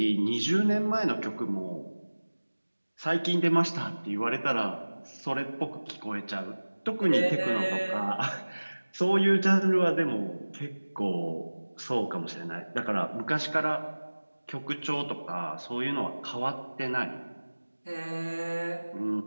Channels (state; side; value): inverted; both; correlation -1.00